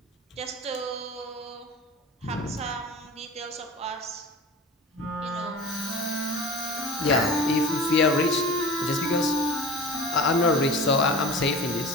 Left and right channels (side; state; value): both; normal; correlation 0.35